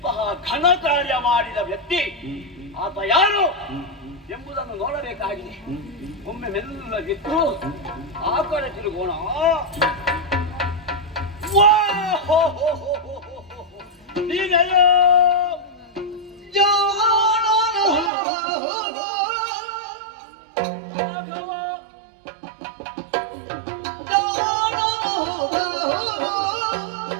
ಘನ ಕಾರ್ಯ ಮಾಡಿದ ವ್ಯಕ್ತಿ ಆತ ಯಾರು ಎಂಬುದನ್ನು ನೋಡಬೇಕಾಗಿದೆ. ಒಮ್ಮೆ ಮೆಲ್ಲಗಿದ್ದು ಆ ಕಡೆ ತಿರುಗೋಣ. ನೀನೆಯೋ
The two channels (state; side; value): drops out; left; at 18.1 s